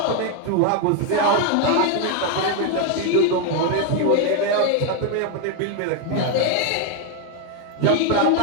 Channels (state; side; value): different; both; correlation 0.01